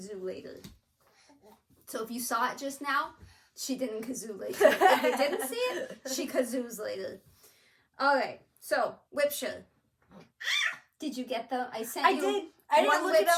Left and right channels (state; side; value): identical; both; correlation 1.00